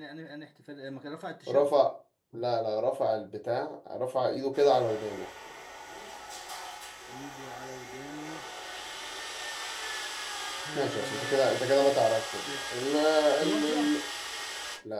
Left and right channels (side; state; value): both; identical; correlation 1.00